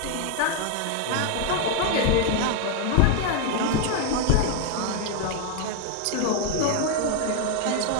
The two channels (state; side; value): different; both; correlation 0.01